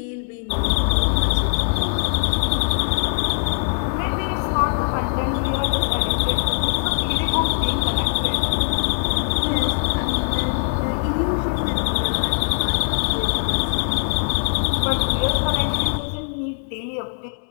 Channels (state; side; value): silent; right; 65 dB below the other